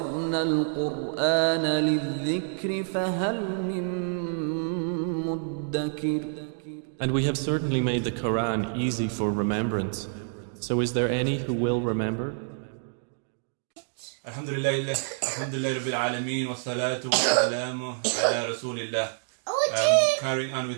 الْقُرْآنَ لِلذِّكْرِ فَهَلْ مِن مُدَّكِرٍ. And we have certainly made the Quran easy for remembrance. So is there any who will remember? Alhamdulillah Rabbil Alameen wa salatu wa salamu ala Rasulillah. Carrying on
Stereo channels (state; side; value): silent; left; digital silence